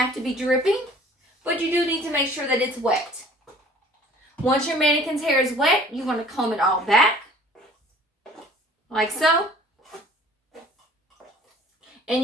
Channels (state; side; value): normal; both; correlation 0.51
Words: to be dripping, but you do need to make sure that it's wet. Once your mannequin's hair is wet, you want to comb it all back, like so. And